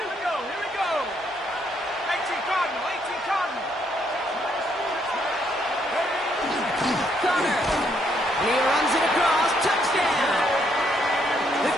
we go, here we go. 18 Cardinal, 18 Cardinal. Connor. And he runs it across. Touchdown. The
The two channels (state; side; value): normal; both; correlation 0.72